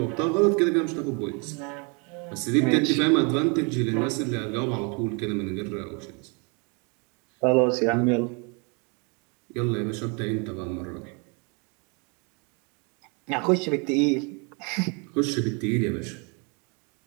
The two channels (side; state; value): left; quieter; 33.4 dB